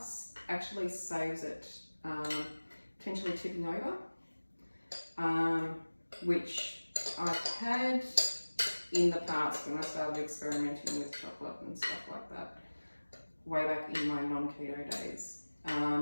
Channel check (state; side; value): inverted; both; correlation -1.00